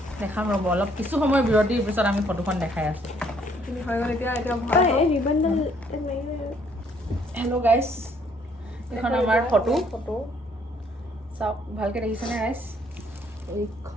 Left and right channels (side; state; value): both; normal; correlation 0.65